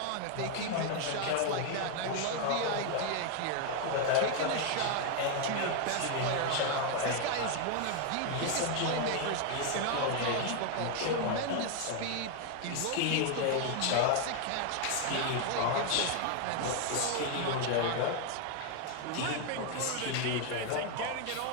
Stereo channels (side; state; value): both; different; correlation 0.01